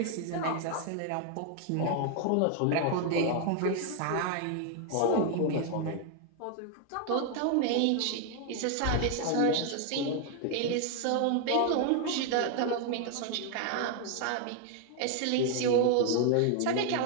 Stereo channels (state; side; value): different; both; correlation 0.00